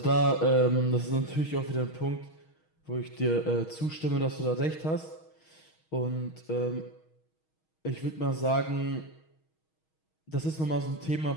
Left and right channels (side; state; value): right; late; 6.3 ms